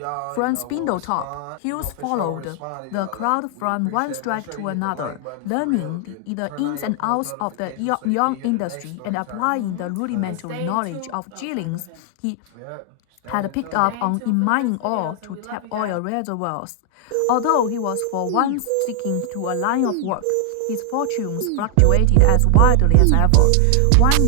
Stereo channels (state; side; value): different; both; correlation 0.00